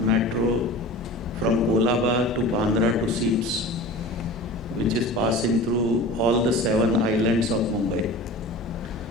metro from Golaba to Bandra to Seeps, which is passing through all the 7 islands of Mumbai,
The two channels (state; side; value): normal; both; correlation 0.36